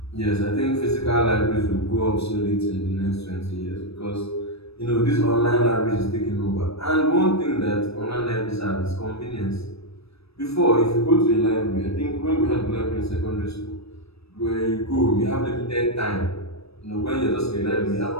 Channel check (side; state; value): right; late; 0.78 ms